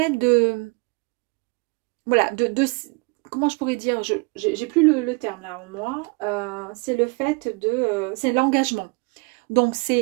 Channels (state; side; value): quieter; left; 29.9 dB